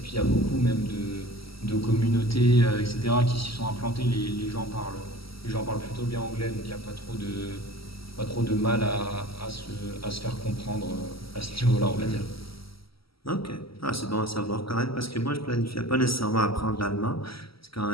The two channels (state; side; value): late; right; 0.75 ms